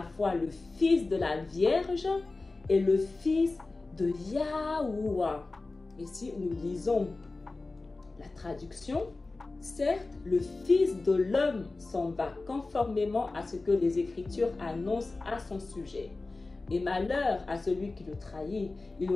fois le fils de la Vierge et le fils de Yahuwah. Et si nous lisons la traduction, certes, le Fils de l'homme s'en va conformément à ce que les Écritures annoncent à son sujet. Et malheur à celui qui le trahit, il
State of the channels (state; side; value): quieter; right; 3.4 dB